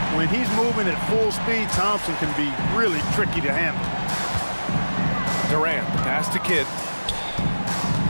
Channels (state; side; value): inverted; both; correlation -1.00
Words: When he's moving at full speed, Thompson can be really tricky to handle. Durant, pass to Kidd.